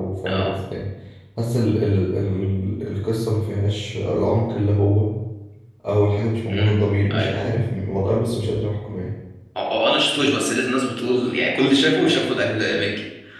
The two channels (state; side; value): identical; both; correlation 1.00